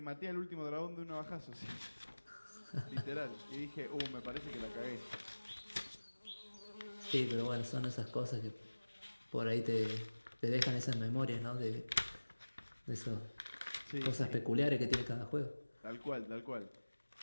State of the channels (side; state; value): both; inverted; correlation -1.00